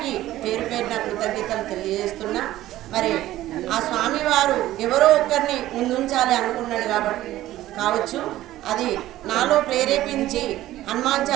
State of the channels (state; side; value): quieter; left; 14.8 dB